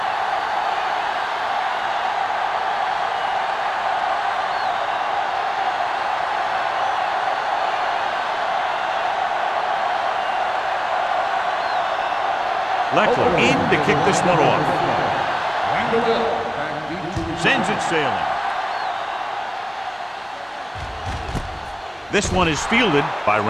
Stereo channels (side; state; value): both; identical; correlation 1.00